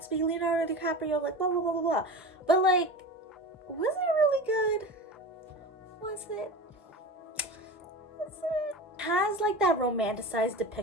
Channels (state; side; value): normal; both; correlation 0.29